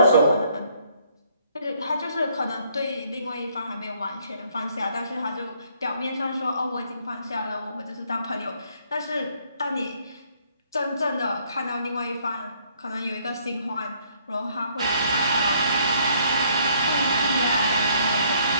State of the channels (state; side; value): inverted; both; correlation -0.65